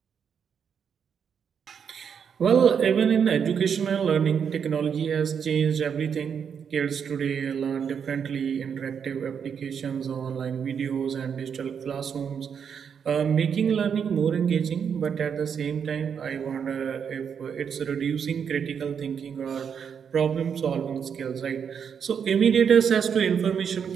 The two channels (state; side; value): quieter; left; 7.3 dB